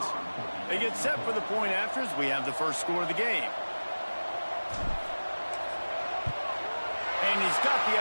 They get set for the point after as we have the first score of the game. And he's got the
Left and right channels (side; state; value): both; inverted; correlation -1.00